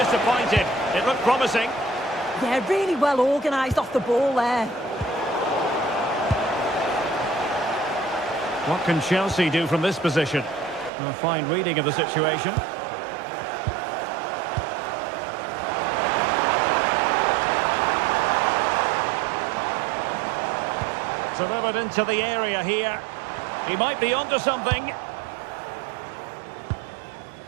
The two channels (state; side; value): drops out; left; at 10.9 s